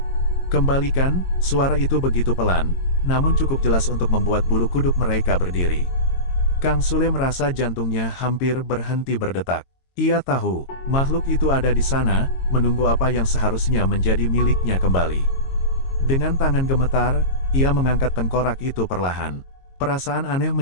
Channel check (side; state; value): right; late; 22 ms